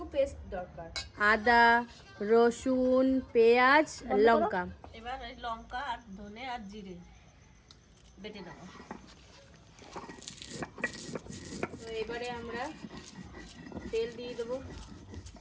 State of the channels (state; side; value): identical; both; correlation 1.00